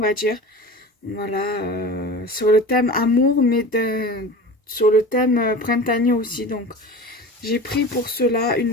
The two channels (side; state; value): both; normal; correlation 0.34